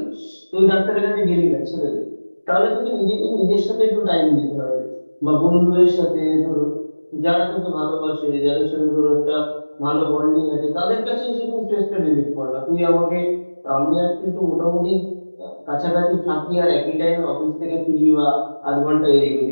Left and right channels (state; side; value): inverted; both; correlation -1.00